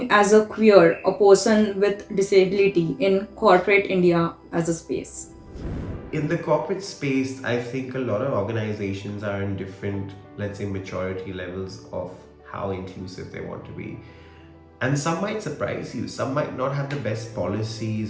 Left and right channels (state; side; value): identical; both; correlation 1.00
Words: as a queer, a person with disability in corporate India as a space? In the corporate space, I think a lot of organizations are in different, let's say, maturity levels of how inclusive they want to be. And some might surprise you. Some might not have the best